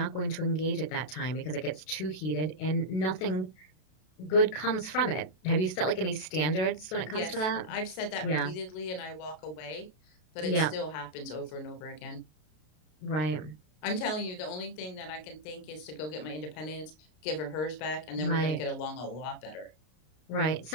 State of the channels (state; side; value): late; right; 32 ms